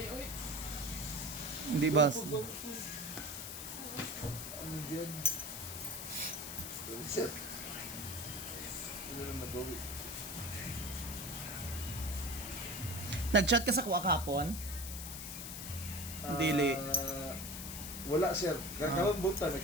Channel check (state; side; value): noise; left; hiss, 7 dB below the sound